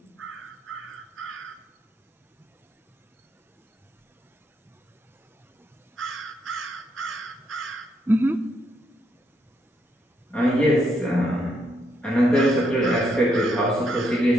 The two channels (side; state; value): both; normal; correlation 0.76